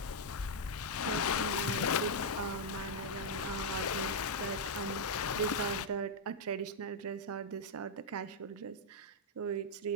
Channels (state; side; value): normal; both; correlation -0.03